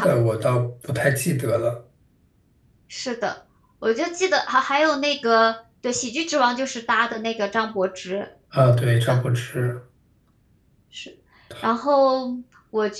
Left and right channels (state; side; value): identical; both; correlation 1.00